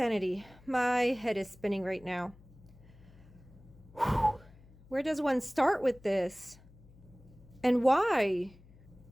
My head is spinning right now. Whew. Where does one start with this? And why?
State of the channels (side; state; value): left; noise; hum, 24 dB below the sound